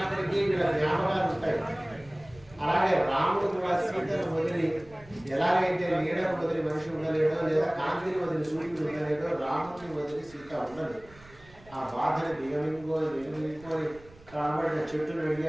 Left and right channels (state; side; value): noise; right; rumble, 23 dB below the sound